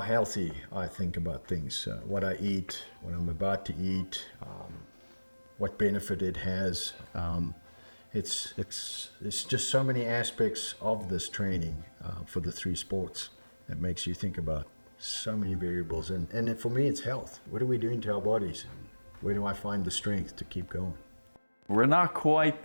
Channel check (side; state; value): both; inverted; correlation -1.00